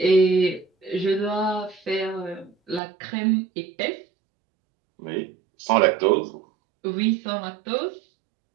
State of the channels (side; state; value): left; drops out; at 2.8 s